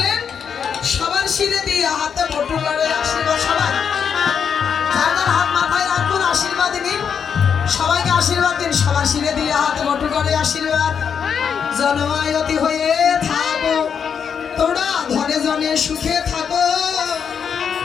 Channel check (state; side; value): quieter; right; 7.1 dB